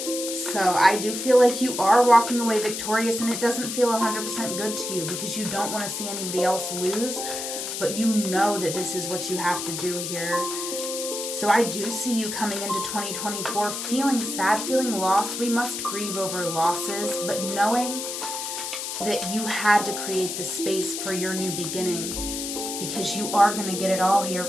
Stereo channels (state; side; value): noise; left; hiss, 5 dB below the sound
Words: So I do feel like you are walking away victorious, and it doesn't feel 100% good to you because you don't want to see anybody else lose. but you know that this is what you have to do here. So I do see you coming into 2024 feeling sad, feeling lost. We must grieve over losses, but knowing that you had to create the space for your new beginning, because you are going to get it all here,